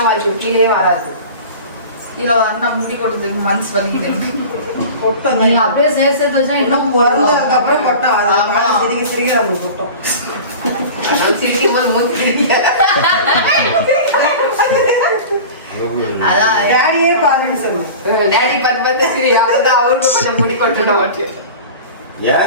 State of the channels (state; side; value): inverted; both; correlation -0.36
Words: வாங்கி கீழே வராது. இதுல வந்து முடி கொட்டதுக்கு மனசு வலிக்குது. நீங்க அப்படியே சேர்த்து வச்சா இன்னும் பிறந்ததுக்கு அப்புறம் கொட்டம். அது சிரிக்க சிரிக்க நம்ம கொட்டம். சிரிக்கும் போது மூச்சு அதான் டேடியே பாருன்னு சொல்லுவோம். டேடி பார்த்து சரி, அப்பதான் அவருக்கு கொஞ்சம் முடி கொட்டணும்.